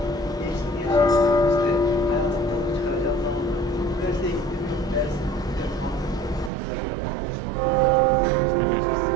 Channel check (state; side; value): drops out; left; at 6.5 s